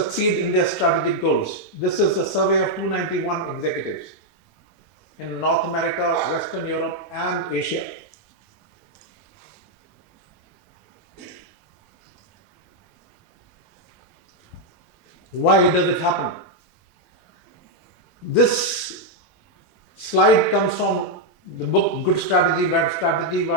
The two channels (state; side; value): normal; both; correlation -0.01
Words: in their strategic goals. This is a survey of 291 executives in North America, Western Europe and Asia. Why does it happen? This slide comes from the book Good Strategy, Bad Strategy